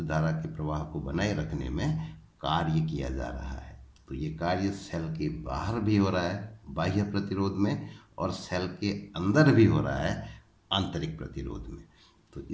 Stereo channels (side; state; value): both; identical; correlation 1.00